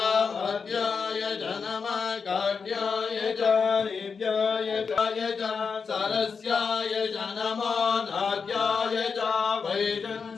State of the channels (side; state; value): right; quieter; 5.5 dB